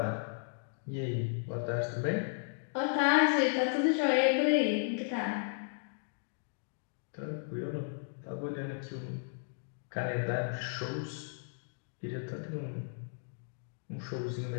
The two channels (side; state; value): right; silent; digital silence